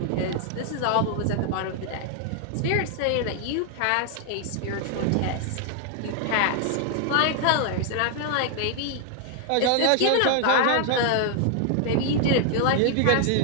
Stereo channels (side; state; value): both; different; correlation 0.00